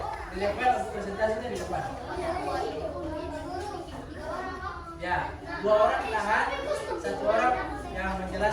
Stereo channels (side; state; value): both; identical; correlation 1.00